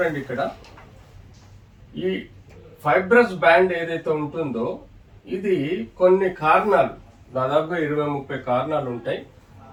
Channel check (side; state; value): both; identical; correlation 1.00